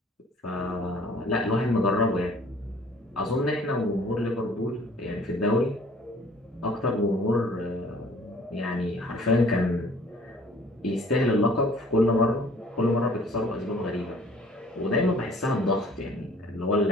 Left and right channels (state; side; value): normal; both; correlation 0.53